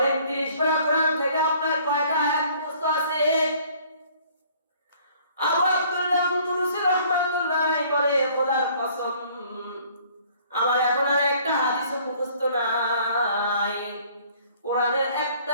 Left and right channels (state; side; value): inverted; both; correlation -0.57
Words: 30 পারা কোরআন থেকে আপনার কয়টা আয়াত মুখস্থ আছে? আবু আব্দুল্লাহ আন্দলুসি রাহমাতুল্লাহ বলে, খোদার কসম, আমার এখন আর একটা হাদিসও মুখস্থ নাই, কোরআনের